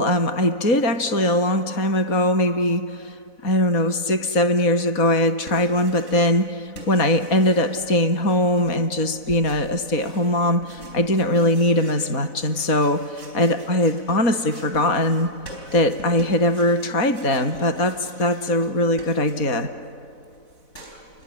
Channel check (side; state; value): right; late; 4.0 ms